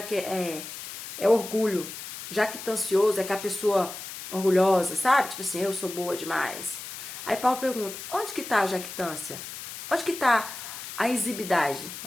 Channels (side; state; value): left; noise; hiss, 10 dB below the sound